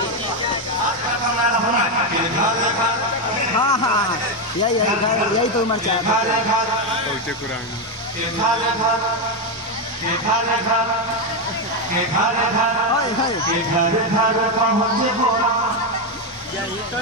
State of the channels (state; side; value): normal; both; correlation 0.07